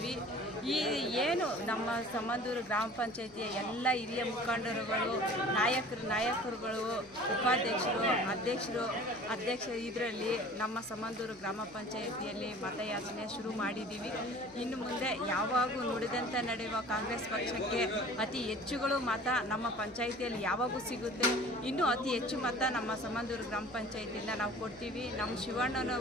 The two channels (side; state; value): left; noise; hum, 26 dB below the sound